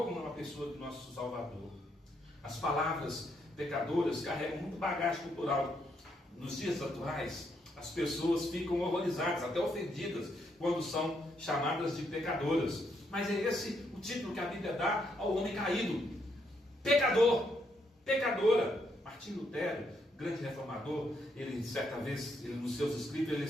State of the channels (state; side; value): normal; both; correlation 0.76